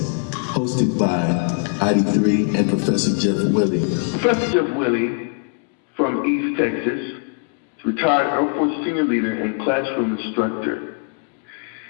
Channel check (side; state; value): right; quieter; 38.7 dB